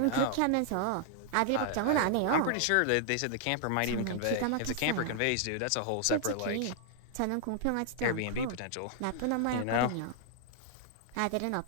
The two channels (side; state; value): both; different; correlation 0.00